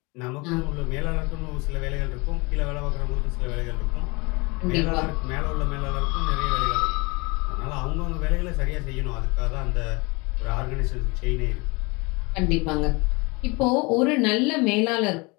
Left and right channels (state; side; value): quieter; right; 26.9 dB